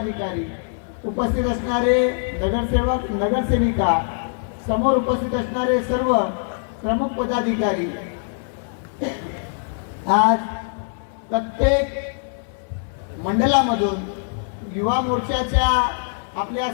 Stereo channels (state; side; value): silent; right; digital silence